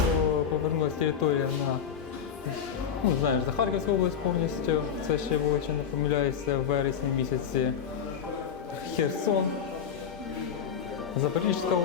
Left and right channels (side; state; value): right; quieter; 7.6 dB